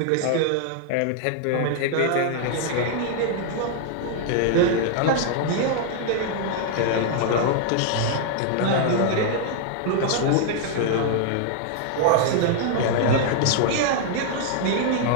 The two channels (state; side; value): different; both; correlation 0.00